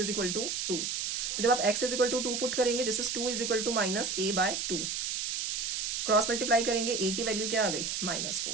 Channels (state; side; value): noise; right; hiss, 1 dB below the sound